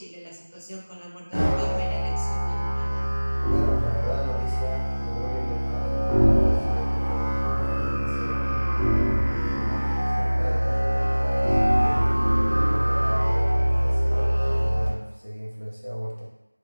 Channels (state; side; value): inverted; both; correlation -1.00